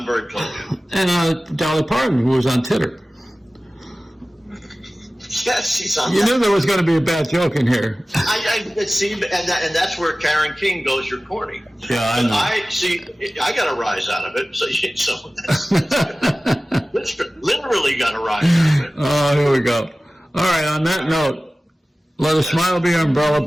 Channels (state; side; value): normal; both; correlation 0.97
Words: very close. And Dolly Parton, who was on Titter. Yes, she's on. You knew there was going to be a bad joke in here. I see, and that's where Karen King goes. You're corny. Yeah, I know. I got a rise out of it. So that's literally got a rise out of it. Oh, here we go. All right. On that note, let a smile be your umbrella,